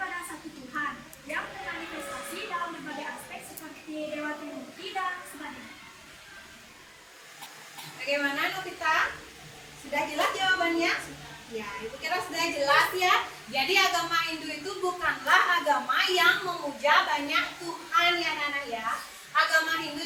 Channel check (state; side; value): identical; both; correlation 1.00